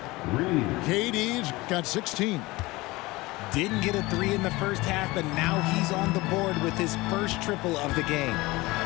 KD's got 16. Didn't get a 3 in the first half, but now he's on the board with his first triple of the game.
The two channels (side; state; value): right; quieter; 21.2 dB